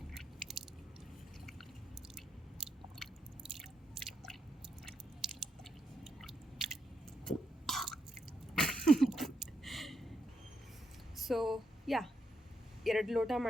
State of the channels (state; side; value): normal; both; correlation 0.81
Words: So yeah 2 ಲೋಟ